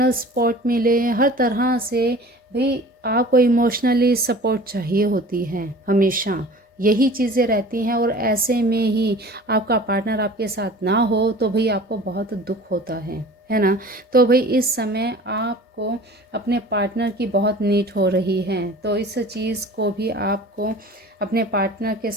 सपोर्ट मिले, हर तरह से भी आपको इमोशनली सपोर्ट चाहिए होती है हमेशा। यही चीज़ें रहती हैं। और ऐसे में ही आपका पार्टनर आपके साथ ना हो तो भाई आपको बहुत दुख होता है ना। तो भाई इस समय आपको अपने पार्टनर की बहुत नीड हो रही है, तो इस चीज़ को भी आपको अपने पार्टनर के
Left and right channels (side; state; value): both; normal; correlation 0.43